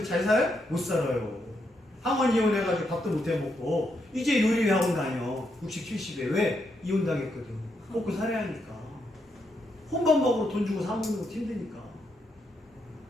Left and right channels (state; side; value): normal; both; correlation 0.80